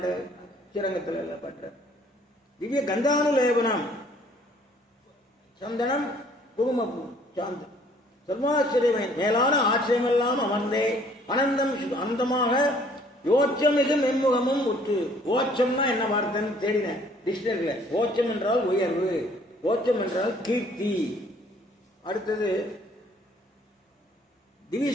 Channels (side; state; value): both; normal; correlation 0.59